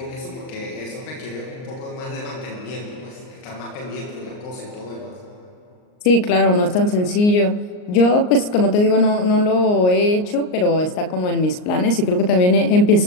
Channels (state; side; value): late; right; 39 ms